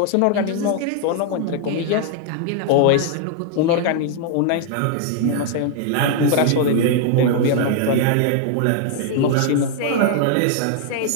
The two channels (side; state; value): both; different; correlation 0.00